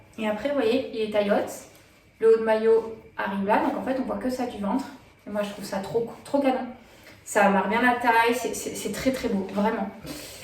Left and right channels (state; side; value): identical; both; correlation 1.00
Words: Et après, vous voyez, il est taillotte. Le haut de maillot arrive là. Donc en fait, on voit que ça du ventre. Et moi, je trouve ça trop, trop canon. Ça marque bien la taille, c'est très très beau, vraiment.